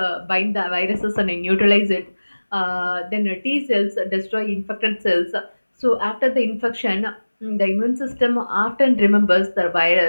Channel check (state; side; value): inverted; both; correlation -1.00